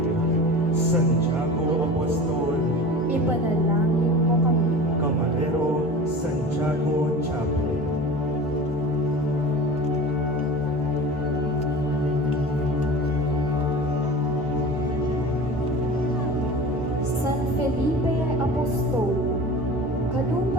Santiago Apostol, Ipanalangin mo kami. Camarero Santiago Chapo. San Felipe Apostol,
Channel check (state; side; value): normal; both; correlation 0.35